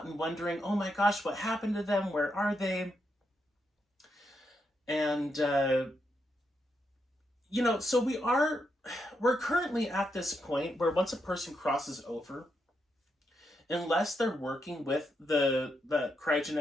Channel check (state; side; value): normal; both; correlation 0.82